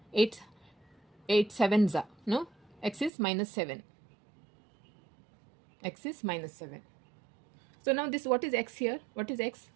8 sevens are. No? X is minus 7. X is minus 7. So now this, what is x here? What is x?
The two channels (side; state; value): left; drops out; at 3.1 s